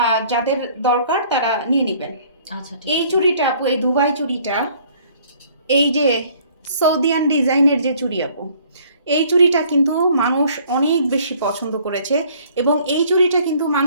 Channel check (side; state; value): both; inverted; correlation -0.58